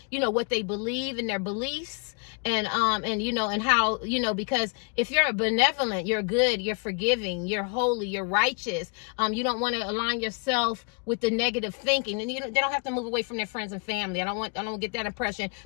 you know, what they believe and their beliefs. And you know, and how, you know, because if you're benevolent, you're good, you're forgiving, you're holy, you're righteous, you don't want to align yourself with the negative thinking. And they don't have to move away from their friends and family. I don't get that impression,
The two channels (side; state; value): right; quieter; 37.7 dB